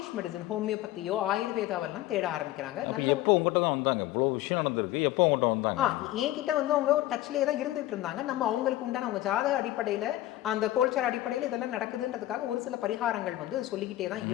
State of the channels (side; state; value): right; quieter; 15.3 dB